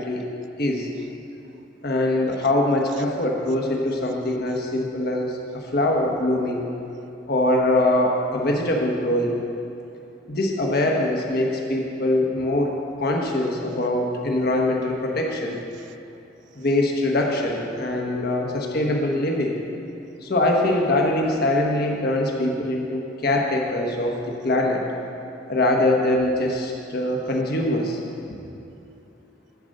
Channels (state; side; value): normal; both; correlation 0.40